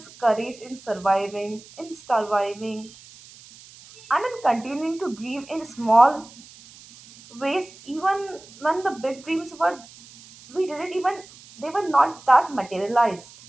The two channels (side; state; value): right; noise; hiss, 21 dB below the sound